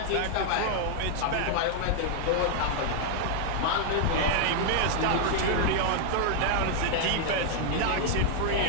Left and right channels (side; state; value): both; different; correlation 0.00